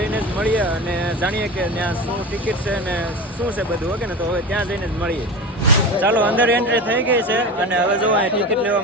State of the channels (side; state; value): both; normal; correlation 0.29